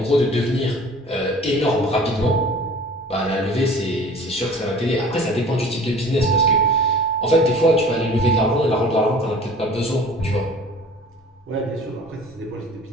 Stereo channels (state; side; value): normal; both; correlation 0.45